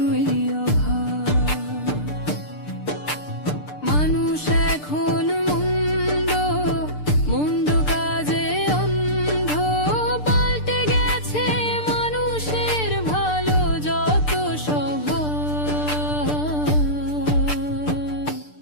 অভাব। মানুষ এখন মন্দ মন্দ কাজে অন্ধ, পাল্টে গেছে মানুষের ভালো যত স্বভাব।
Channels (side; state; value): right; late; 6.7 ms